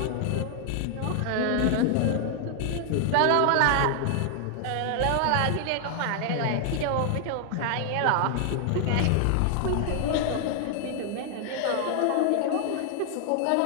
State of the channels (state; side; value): different; both; correlation 0.00